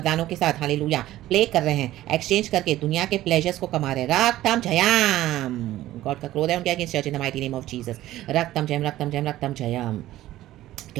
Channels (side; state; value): left; quieter; 14.8 dB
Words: के साथ हालेलुया प्ले कर रहे हैं, एक्सचेंज करके दुनिया के प्लेजर्स को कमा रहे हैं रक्तम जयम। गॉड का क्रोध है उनके against church in the mighty name of Jesus. रक्तम जयम, रक्तम जयम, रक्तम जयम।